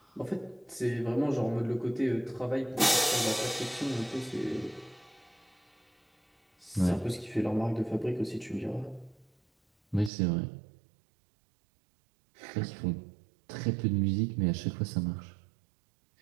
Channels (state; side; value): drops out; left; at 10.1 s